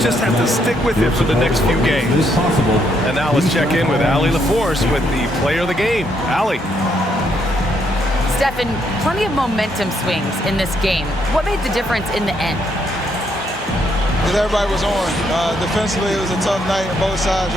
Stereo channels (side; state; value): both; normal; correlation 0.74